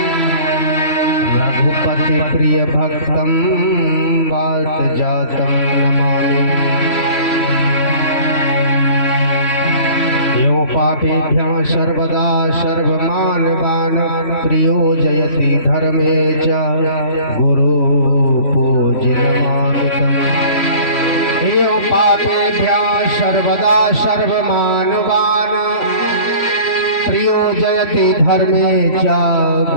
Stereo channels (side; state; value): right; late; 3.5 ms